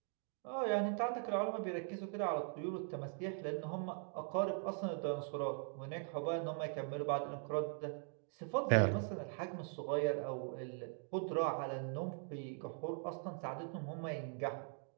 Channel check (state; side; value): silent; left; 50 dB below the other